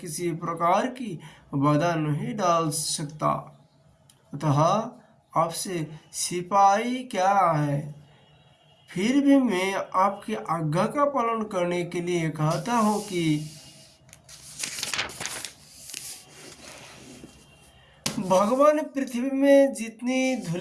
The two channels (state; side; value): identical; both; correlation 1.00